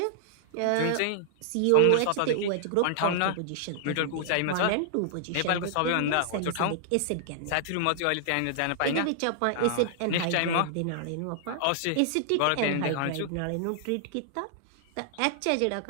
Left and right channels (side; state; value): both; different; correlation -0.01